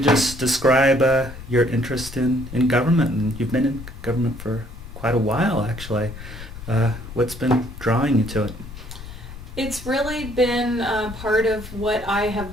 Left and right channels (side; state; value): left; noise; rumble, 12 dB below the sound